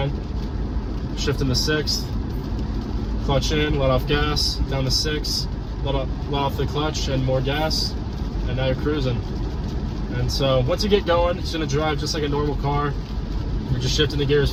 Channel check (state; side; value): identical; both; correlation 1.00